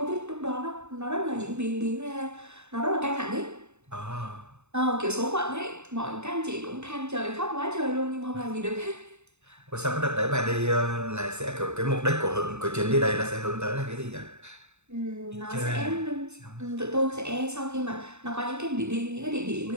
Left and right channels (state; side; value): late; left; 0.82 ms